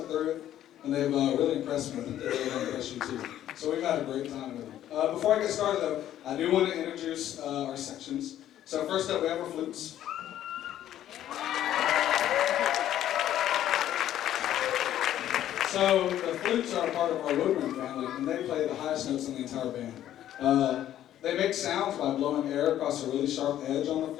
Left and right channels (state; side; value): quieter; right; 11.9 dB